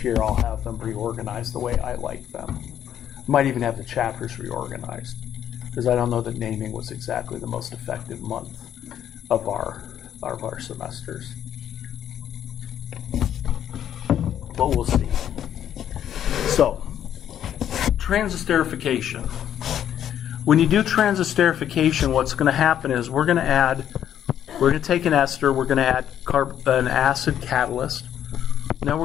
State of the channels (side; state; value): right; quieter; 10.2 dB